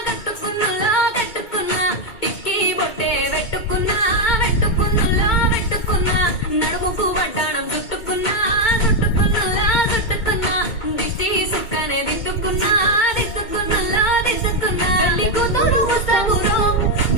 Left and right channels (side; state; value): right; late; 2.2 ms